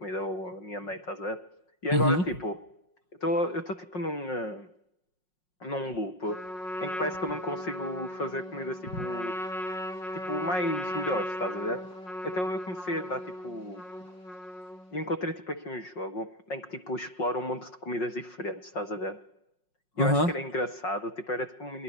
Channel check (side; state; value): right; late; 5.5 ms